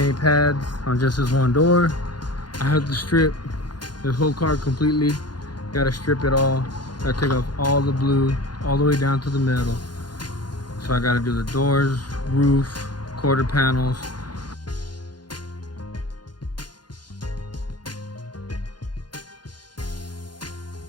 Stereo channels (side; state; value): right; late; 0.71 ms